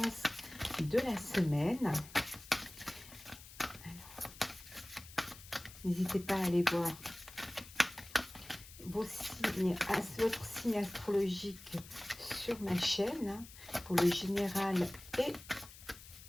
de la semaine. N'hésitez pas à aller voir vos signes, votre signe astrologique sur ma chaîne pour le général et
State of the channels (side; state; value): left; noise; hiss, 17 dB below the sound